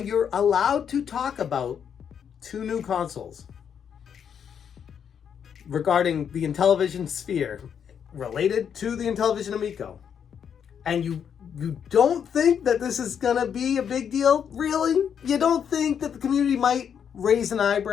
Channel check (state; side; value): quieter; right; 7.9 dB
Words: allowed to talk about 2 new consoles regarding the Intellivision sphere related to the Intellivision Amico, and you don't think that this is gonna be a big deal? Really? You don't think that the community might raise an